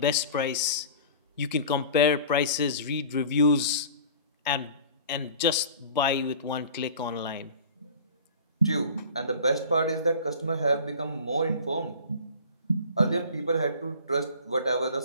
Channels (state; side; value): inverted; both; correlation -0.42